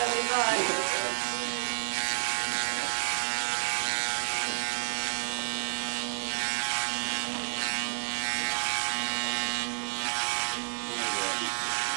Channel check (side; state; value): left; silent; 58 dB below the other